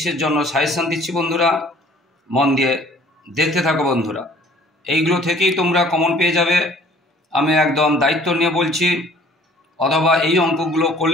জন্য সাজেশন দিচ্ছি বন্ধুরা। মন দিয়ে দেখতে থাকো বন্ধুরা, এইগুলো থেকেই তোমরা কমন পেয়ে যাবে। আমি একদম দায়িত্ব নিয়ে বলছি, অথবা এই অঙ্কগুলো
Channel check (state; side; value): normal; both; correlation 0.53